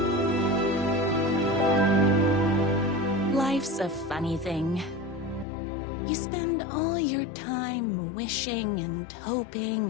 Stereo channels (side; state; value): right; drops out; at 5.5 s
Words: Life's a funny thing. You spend all your time wishing and